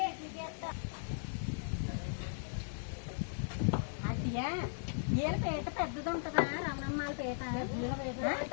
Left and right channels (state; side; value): silent; right; digital silence